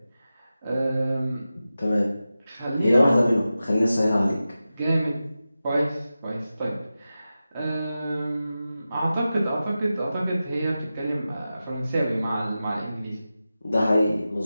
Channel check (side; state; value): both; inverted; correlation -0.93